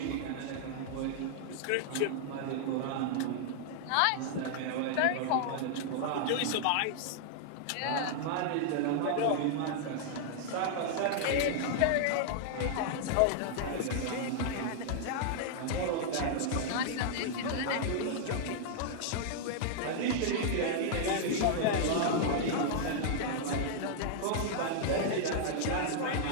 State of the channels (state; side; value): different; both; correlation -0.01